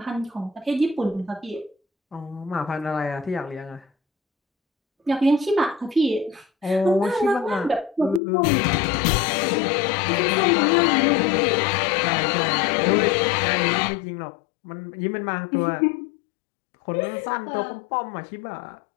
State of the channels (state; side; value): drops out; right; at 8.2 s